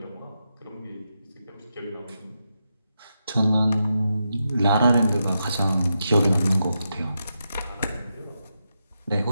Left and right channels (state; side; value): inverted; both; correlation -0.86